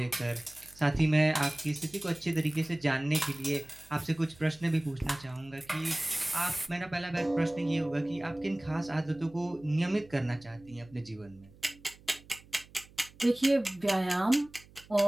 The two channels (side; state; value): right; noise; hum, 24 dB below the sound